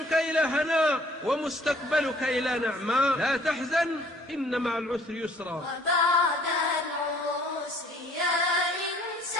إلى هناء ومستقبلك إلى نعماء. لا تحزن إن مع العسر يسرا. وبعد العسر يا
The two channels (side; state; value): both; normal; correlation 0.57